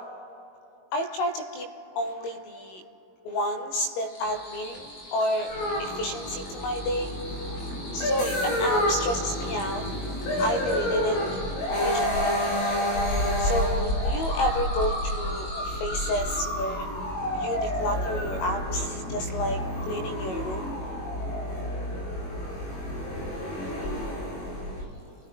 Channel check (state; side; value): late; right; 21 ms